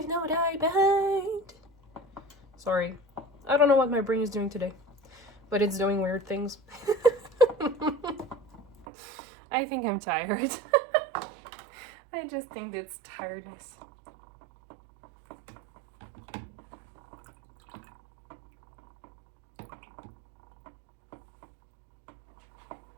No Dye Behind. Sorry. I don't know what my brain is doing today, but it's doing weird things. I think I'm tired. I just think it's tiredness.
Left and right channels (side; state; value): left; drops out; at 8.8 s